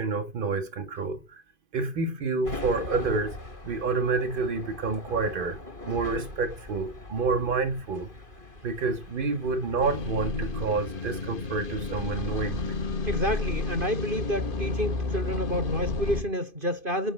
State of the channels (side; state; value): left; late; 2.5 ms